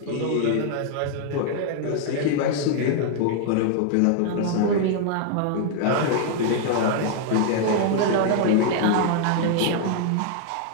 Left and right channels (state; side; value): different; both; correlation 0.00